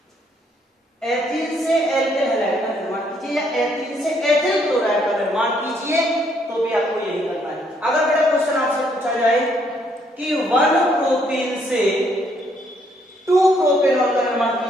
एल्किल हैलाइड का निर्माण कीजिए या एथीन से एथिल क्लोराइड का निर्माण कीजिए, तो भी आपको यही करना है। अगर बेटा क्वेश्चन आपसे पूछा जाए कि 1 प्रोपीन से 2 प्रोपेनॉल का निर्माण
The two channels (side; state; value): both; normal; correlation 0.69